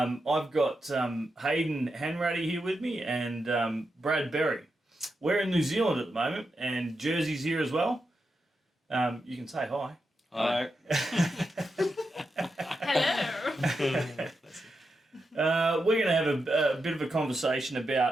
got Hayden Hanratty here with me and Brad Berry. We're in New Zealand at the moment, and Jersey's here as well. You can say hi. Hi. Hello. We're going to have a bit of a conversation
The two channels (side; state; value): both; normal; correlation 0.87